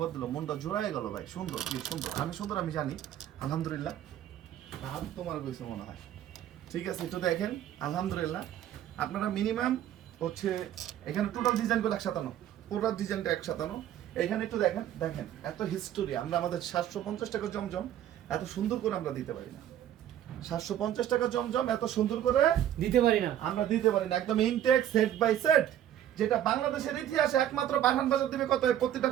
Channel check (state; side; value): quieter; left; 11.3 dB